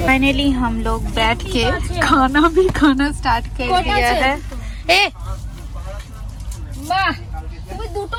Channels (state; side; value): identical; both; correlation 1.00